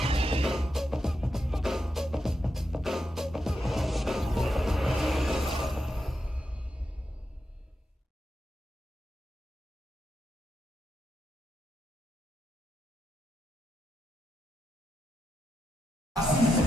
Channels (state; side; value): normal; both; correlation 0.86